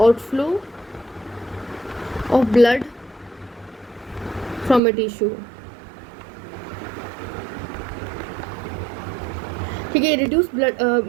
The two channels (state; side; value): drops out; left; at 4.8 s